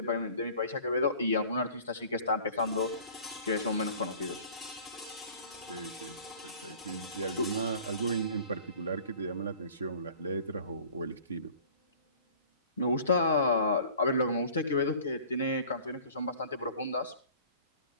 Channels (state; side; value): inverted; both; correlation -0.48